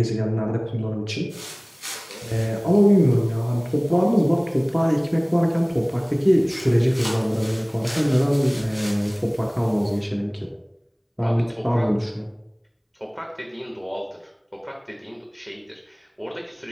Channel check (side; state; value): both; identical; correlation 1.00